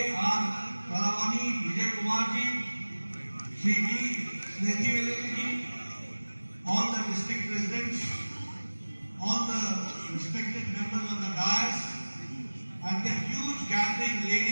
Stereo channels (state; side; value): inverted; both; correlation -1.00